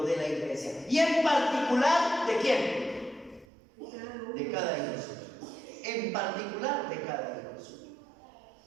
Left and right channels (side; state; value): left; drops out; at 3.5 s